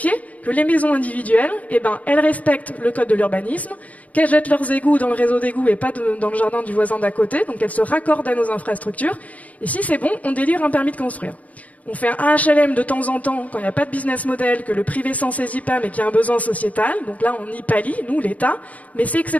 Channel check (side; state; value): right; late; 0.069 ms